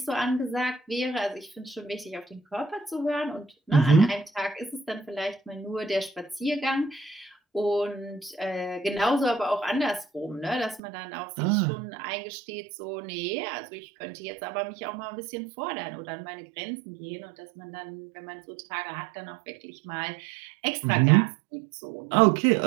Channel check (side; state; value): left; drops out; at 10.8 s